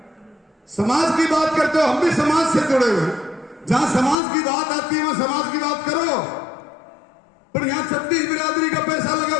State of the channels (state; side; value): drops out; right; at 4.2 s